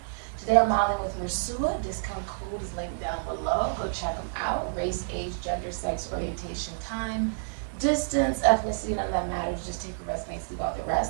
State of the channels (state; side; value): silent; left; digital silence